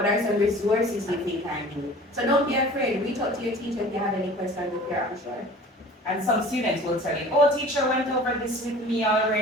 are some resources you think I need? So don't be afraid. Reach out to your teacher if you have any questions if you're unsure. And some students will tell you, oh, teacher went over this with me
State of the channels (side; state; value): both; normal; correlation 0.44